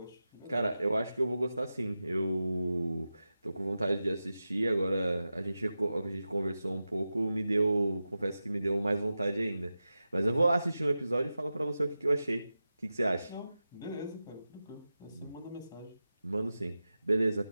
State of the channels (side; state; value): both; inverted; correlation -0.93